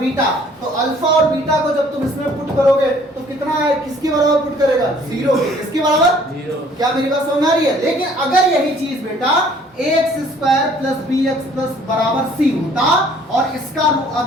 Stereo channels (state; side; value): normal; both; correlation 0.57